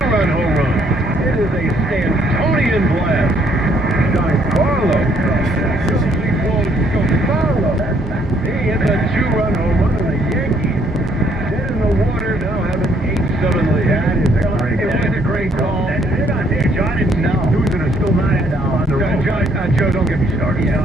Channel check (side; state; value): both; normal; correlation 0.67